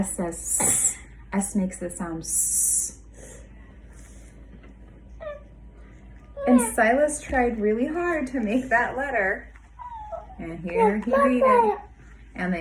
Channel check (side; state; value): both; identical; correlation 1.00